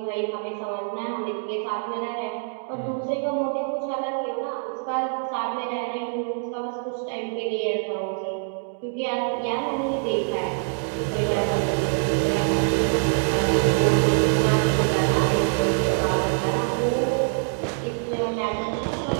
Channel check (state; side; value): silent; left; 62 dB below the other